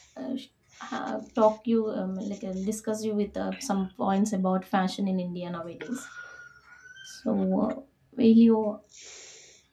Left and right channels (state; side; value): identical; both; correlation 1.00